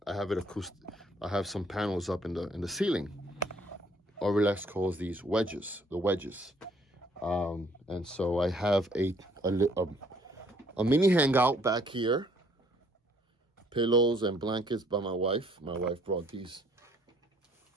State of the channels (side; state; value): both; normal; correlation 0.63